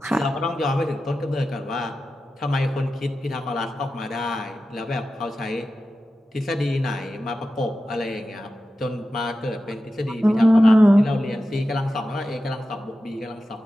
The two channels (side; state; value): both; normal; correlation 0.93